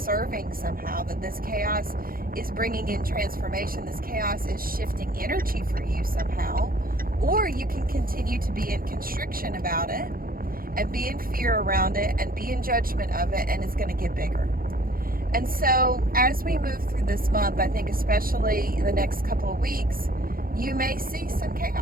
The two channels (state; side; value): late; left; 0.42 ms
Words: somehow, that this chaos is bringing in transformation, this chaos is shifting energy for you somehow, or you can continue to be in constriction about it and be in fear around it and be in judgment of it, and it's going to get bigger. And so as we move through this month, I think especially in the next couple of weeks, you may see some